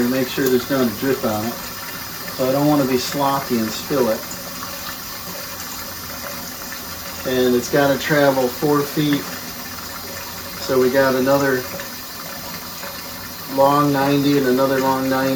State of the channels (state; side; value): identical; both; correlation 1.00